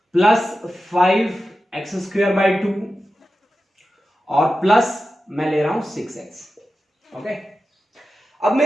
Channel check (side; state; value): both; normal; correlation 0.92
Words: प्लस 5x स्क्वायर बाय 2, और प्लस मैं ले रहा हूं 6x, ओके। अब